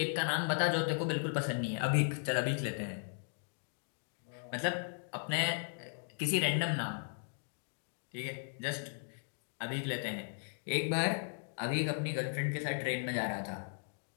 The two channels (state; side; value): silent; right; digital silence